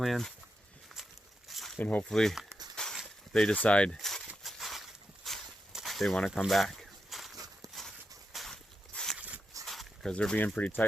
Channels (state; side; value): normal; both; correlation 0.87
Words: and hopefully they decide they want to come back, because they're being pretty